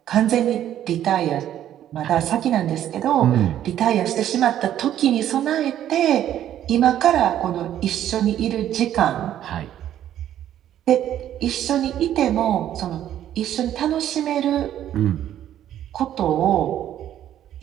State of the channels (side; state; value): left; quieter; 11.3 dB